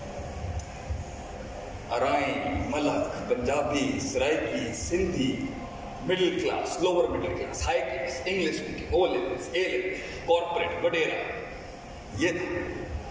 Arain Malik Punjabi Saraiki Sindhi middle class lower middle class high class English speaking O levels A levels corporate وغیرہ یہ تھا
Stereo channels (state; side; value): identical; both; correlation 1.00